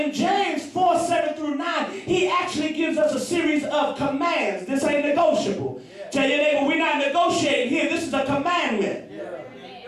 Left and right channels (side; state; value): both; identical; correlation 1.00